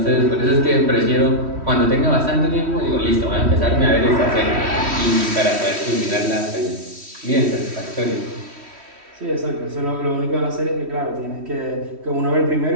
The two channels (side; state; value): left; late; 3.1 ms